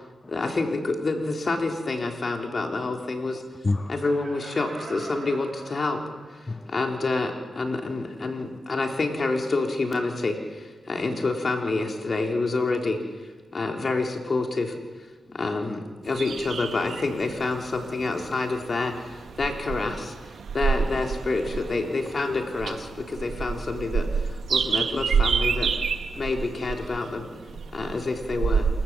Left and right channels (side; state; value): both; normal; correlation 0.87